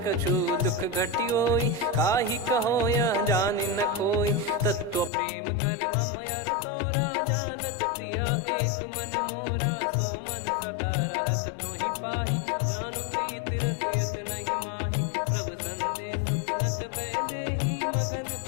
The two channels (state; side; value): drops out; right; at 5.1 s